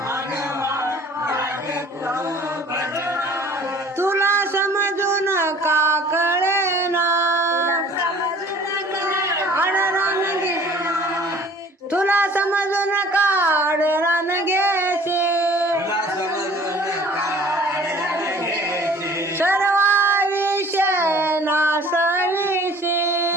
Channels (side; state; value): both; normal; correlation 0.50